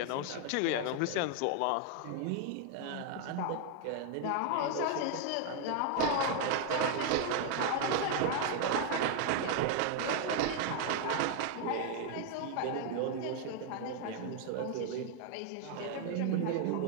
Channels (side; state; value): both; different; correlation 0.00